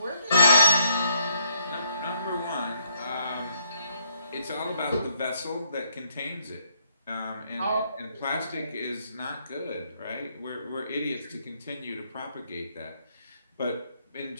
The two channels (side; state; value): both; inverted; correlation -0.71